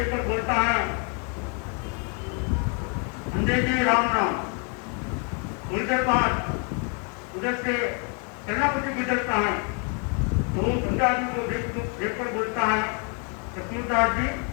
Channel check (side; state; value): right; quieter; 38.1 dB